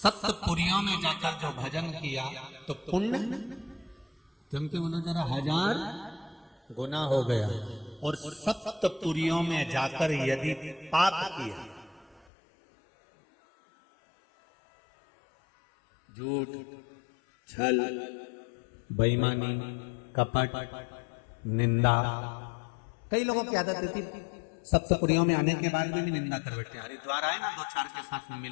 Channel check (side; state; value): right; drops out; at 12.2 s